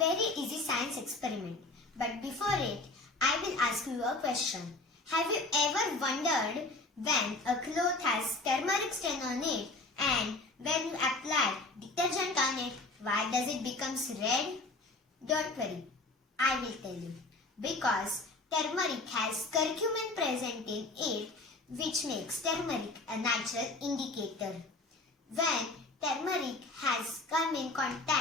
easy science experiment. But before it, I will ask you a question. Have you ever wondered when a cloth has turmeric stain on it and when you apply detergent on it, why does it become red? Don't worry, I will tell you. Because turmeric has curcumin present in it, which makes turmeric a natural indicator. When turmeric has come in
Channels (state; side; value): quieter; right; 3.1 dB